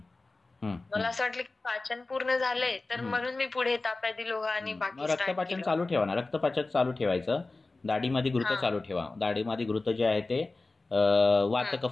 मला असं वाटलं की पाचन पूर्ण झालंय तर म्हणून मी पुढे ताप्यादी लोहा आणि बाकी रक्तपाचन चालू ठेवा ना, रक्तपाचन चालू ठेवायचं. दाढीमध्ये घृत चालू ठेवा. दाढीमध्ये घृत जे आहे ते वात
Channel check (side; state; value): right; quieter; 3.4 dB